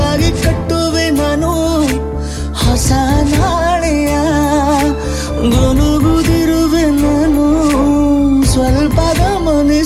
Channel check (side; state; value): both; identical; correlation 1.00